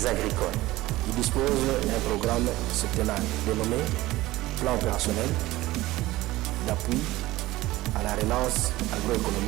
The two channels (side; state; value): left; quieter; 17.9 dB